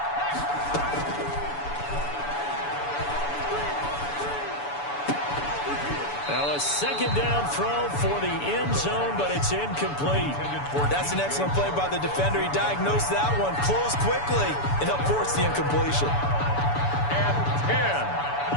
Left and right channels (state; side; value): late; right; 7.0 ms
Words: Now a 2nd down throw for the end zone, but it's incomplete. That's an excellent play by the defender. He diagnosed that one, closed quickly, and helped force the incompletion. And